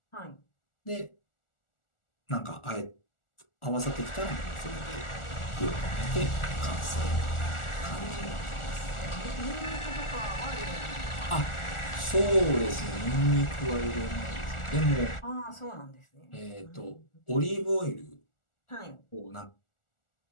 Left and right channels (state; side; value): late; right; 1.4 ms